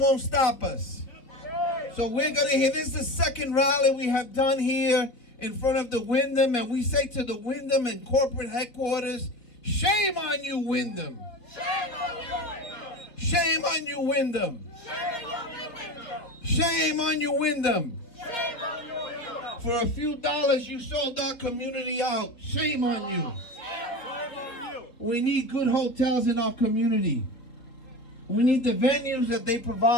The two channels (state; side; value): late; right; 3.5 ms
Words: won't stop us. So we're going to hear, this is the second rally we have done here in front of the Wyndham, and we say to the Wyndham and corporate headquarters, shame on you, Wyndham. Shame on you, Wyndham. Shame on you, Wyndham. Shame on you, Wyndham. Shame on you, Wyndham. For a few dollars, you sold our community out. Shame on you. We need good hotels in our community. We need the venues that they